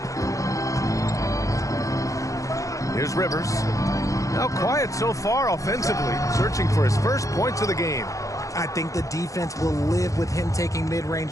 Here's Rivers. Now quiet so far offensively, searching for his first points of the game. I think the defense will live with him taking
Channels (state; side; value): late; right; 0.16 ms